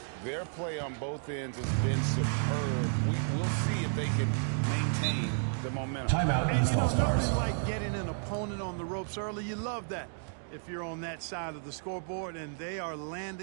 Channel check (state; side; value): silent; left; digital silence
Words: Their play on both ends has been superb. We'll see if they can maintain the momentum. Timeout, And, East All-Stars. nothing like getting an opponent on the ropes early. You love that if you're on that side of the scoreboard, and they are